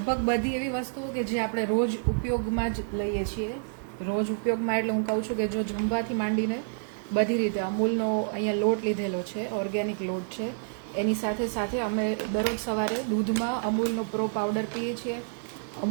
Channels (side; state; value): left; silent; digital silence